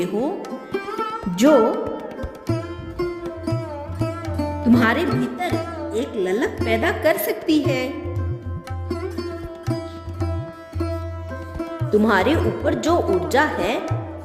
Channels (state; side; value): identical; both; correlation 1.00